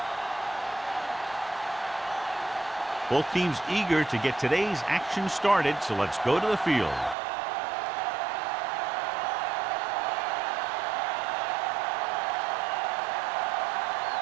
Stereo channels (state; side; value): drops out; left; at 7.2 s